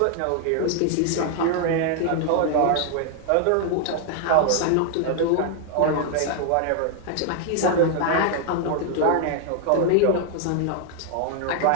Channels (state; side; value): different; both; correlation 0.00